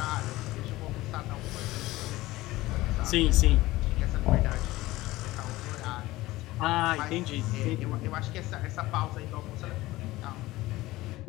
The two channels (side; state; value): right; quieter; 18.2 dB